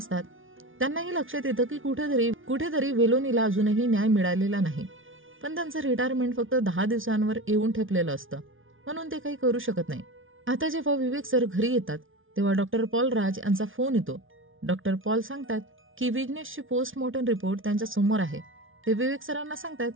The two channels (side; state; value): left; late; 0.58 ms